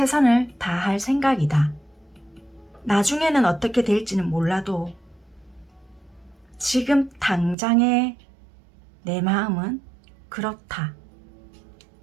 다할 생각이다. 나중에는 어떻게 될지는 몰라도 지금 당장의 내 마음은 그렇다.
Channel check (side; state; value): left; drops out; at 7.6 s